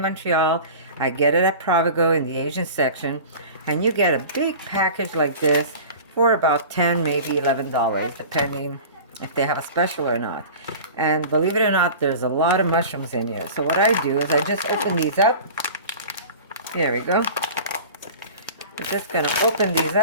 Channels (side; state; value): both; inverted; correlation -0.38